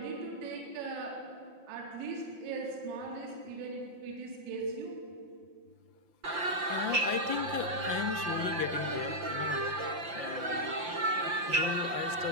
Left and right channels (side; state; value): left; late; 5.8 ms